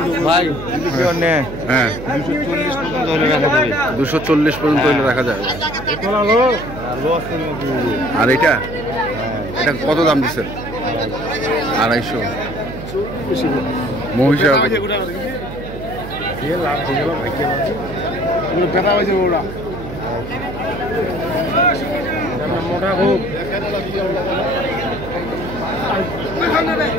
ভাই হ্যাঁ 240 পর্যন্ত হলে রাখা যাবে। আর এটা এটা কত দাম দিচ্ছেন? 250 মহিষা মোটা খুব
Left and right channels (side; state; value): right; noise; hum, 10 dB below the sound